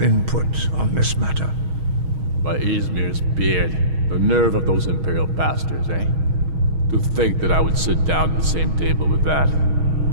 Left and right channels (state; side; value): late; left; 6.3 ms